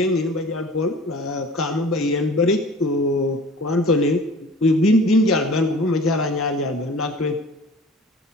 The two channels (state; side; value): normal; both; correlation 0.43